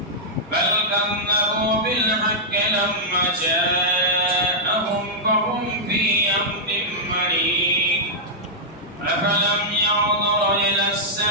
بل كذبوا بالحق لما جاءهم فهم في أمر مريض أفلم ينظروا إلى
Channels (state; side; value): normal; both; correlation -0.10